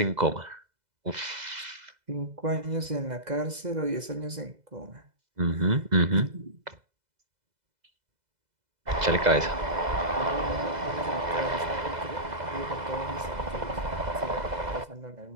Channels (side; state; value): left; late; 2.0 ms